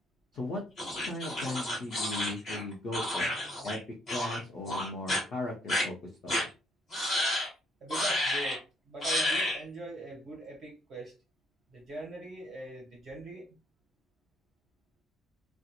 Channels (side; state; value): both; normal; correlation 0.68